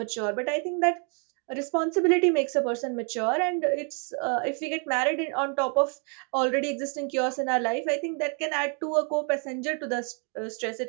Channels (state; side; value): quieter; left; 39.5 dB